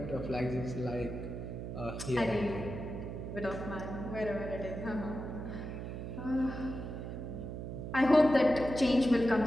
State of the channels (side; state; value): right; noise; hum, 6 dB below the sound